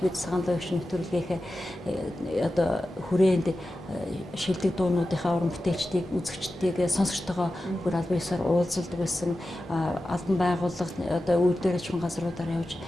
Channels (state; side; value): normal; both; correlation 0.93